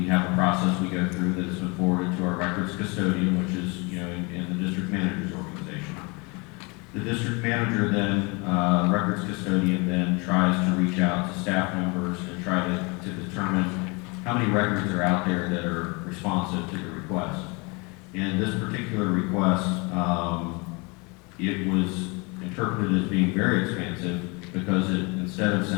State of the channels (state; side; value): quieter; right; 29.1 dB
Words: have a process we go through that has been forwarded to our records custodian, which is, in the district manager's organization. The district manager then, records custodian then tries to reach out to staff members and try to determine how many records are out there that are responsive to the request. In this particular request, it was interpreted as being very expansive because it, instead of